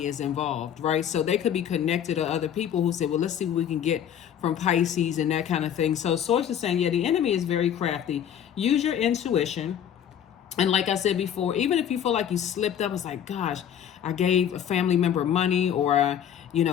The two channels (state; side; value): quieter; right; 9.4 dB